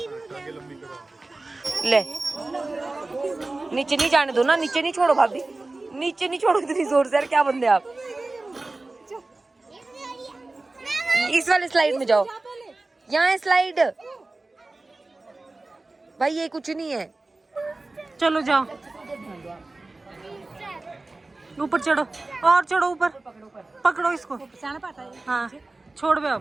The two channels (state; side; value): quieter; left; 3.2 dB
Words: ले, नीचे नहीं जाने दो ना, नीचे नहीं छोड़ो भाभी, नीचे नहीं छोड़ो इतनी जोर से। यार क्या बंदे आप। इस वाले स्लाइड में जाओ, यहाँ है स्लाइड। भाई ये कुछ नहीं है, चलो जाओ। ऊपर चढ़ो और चढ़ो ऊपर, पकड़ो इसको। हाँ छोड़ बे